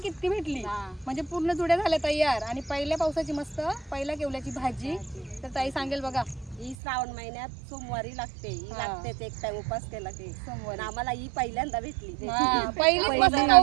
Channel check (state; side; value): drops out; left; at 6.8 s